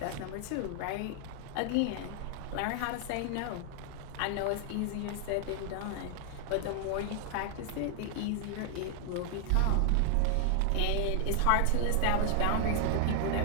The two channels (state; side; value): different; both; correlation 0.00